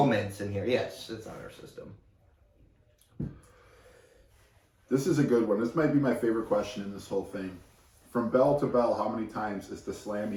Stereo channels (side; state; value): both; identical; correlation 1.00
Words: in here. Yes, it's honor system. This is a good one. This might be my favorite question in this whole thing. From bell to bell, how many times is the